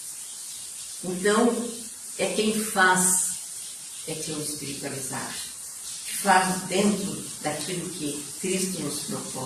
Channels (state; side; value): identical; both; correlation 1.00